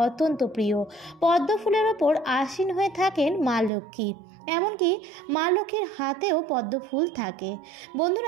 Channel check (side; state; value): left; drops out; at 3.7 s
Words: অত্যন্ত প্রিয়। পদ্ম ফুলের ওপর আসীন হয়ে থাকেন মা লক্ষ্মী, এমনকি মা লক্ষ্মীর হাতেও পদ্ম ফুল থাকে।